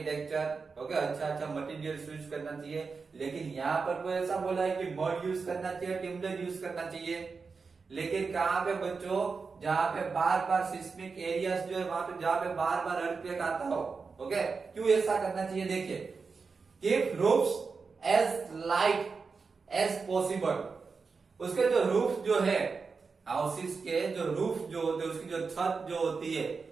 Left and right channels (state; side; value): quieter; left; 4.8 dB